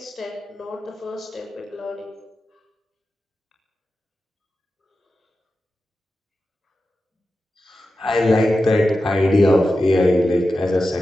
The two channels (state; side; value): normal; both; correlation 0.92